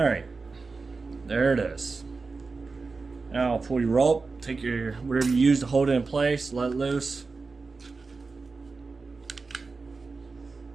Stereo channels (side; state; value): left; quieter; 4.2 dB